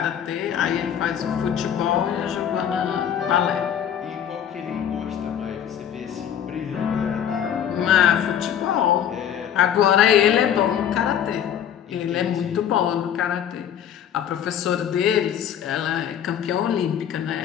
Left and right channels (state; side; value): quieter; right; 9.3 dB